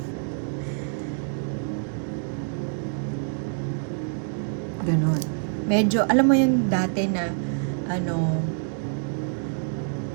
ganon. Medyo, alam mo yun dati na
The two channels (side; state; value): left; silent; digital silence